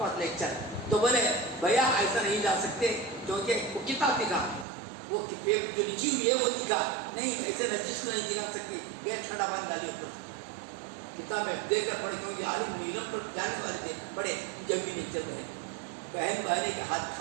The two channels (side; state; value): left; drops out; at 4.7 s